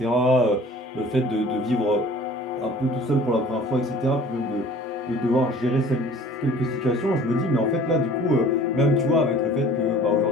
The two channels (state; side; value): normal; both; correlation 0.48